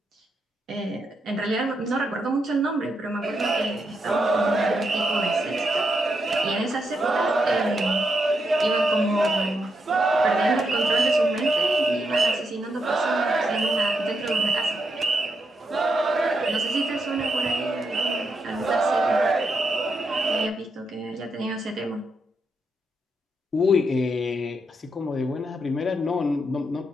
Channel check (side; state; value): both; normal; correlation 0.82